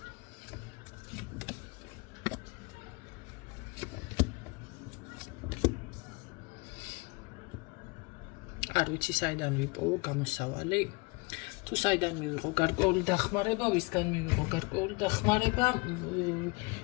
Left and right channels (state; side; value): quieter; right; 27.7 dB